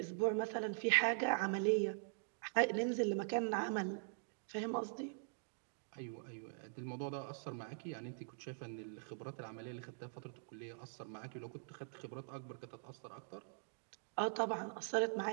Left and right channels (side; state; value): left; silent; digital silence